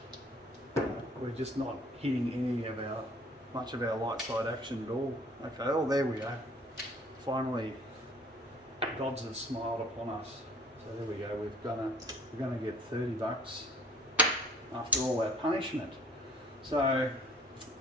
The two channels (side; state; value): both; normal; correlation 0.54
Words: we're just not hitting much of our light side action at all. Okay, oh, there we go. Finally, Dodds has smiled upon us. So there we go. We're gonna get $30 after all our punishment. So